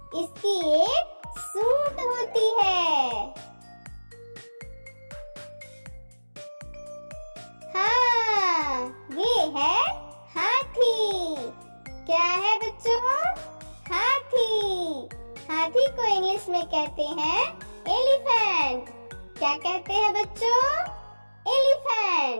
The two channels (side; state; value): both; inverted; correlation -1.00